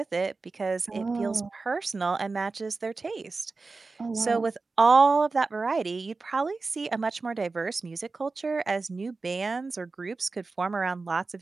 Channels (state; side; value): quieter; left; 3.9 dB